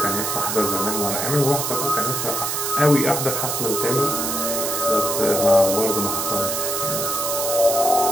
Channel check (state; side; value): noise; right; hiss, 1 dB below the sound